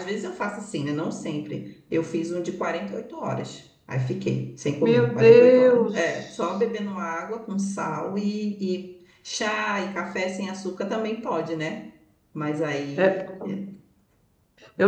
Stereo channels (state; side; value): identical; both; correlation 1.00